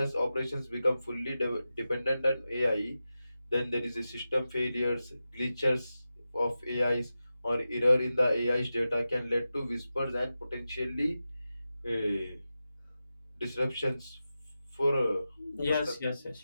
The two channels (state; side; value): inverted; both; correlation -0.92